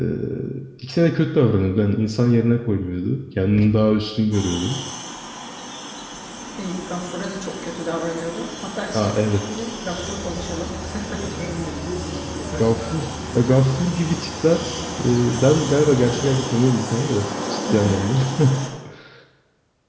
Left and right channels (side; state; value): both; identical; correlation 1.00